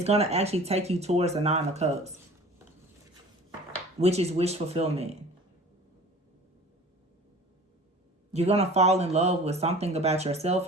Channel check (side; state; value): both; normal; correlation 0.43